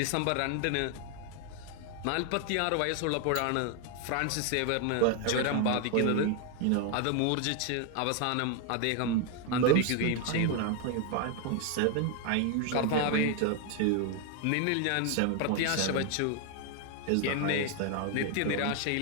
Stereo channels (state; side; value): different; both; correlation 0.01